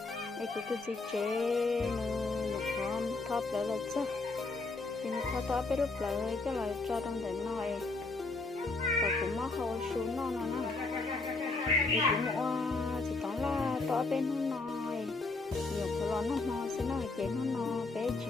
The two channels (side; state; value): right; quieter; 3.5 dB